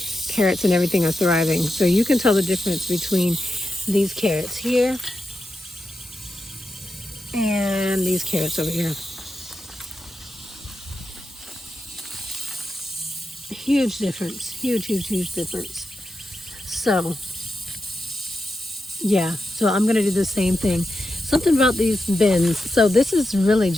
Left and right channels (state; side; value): normal; both; correlation 0.89